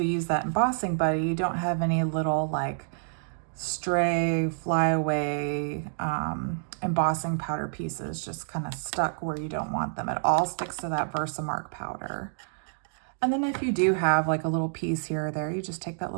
use that embossing buddy, you don't have any little like stray, flyaway embossing powder pieces just kind of stuck where you don't want them. It all sticks to that Versamark powder. And then if you do have like a little piece here or there, you just take that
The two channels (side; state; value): left; silent; digital silence